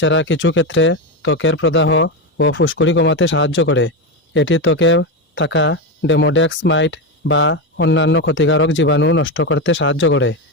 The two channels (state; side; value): normal; both; correlation 0.13